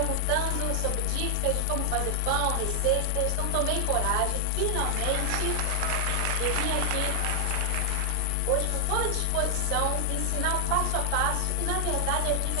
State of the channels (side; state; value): both; different; correlation 0.00